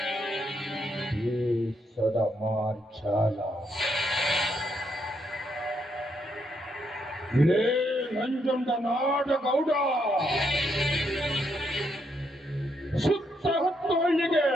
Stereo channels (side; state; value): both; normal; correlation 0.77